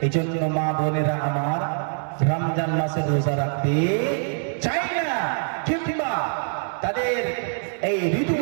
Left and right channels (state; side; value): silent; left; 62 dB below the other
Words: এই জন্য মা বোনেরা আমার রমজান মাসে রোজা রাখতে চাই না, কিংবা তাদের এই